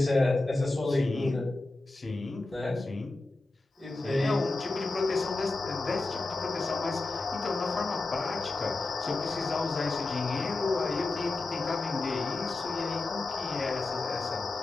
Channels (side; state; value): right; quieter; 3.2 dB